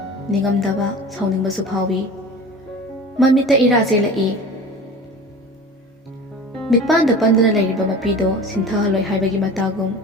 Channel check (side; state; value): both; normal; correlation 0.37